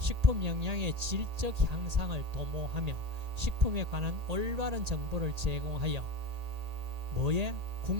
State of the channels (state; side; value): late; left; 1.8 ms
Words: 영양의 질적 향상을 도모하며 식품에 관한 올바른 정보를 제공하여 뭐에?